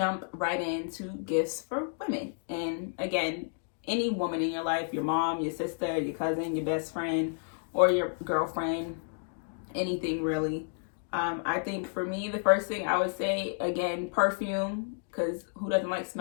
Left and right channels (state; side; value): silent; right; digital silence